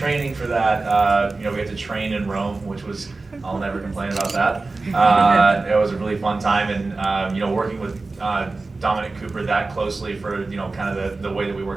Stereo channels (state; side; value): quieter; left; 3.6 dB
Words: for that. We had to train in Rome, which was, I'll never complain about that. It was a really fun time, and working with Dominic Cooper that closely for kind of the way that we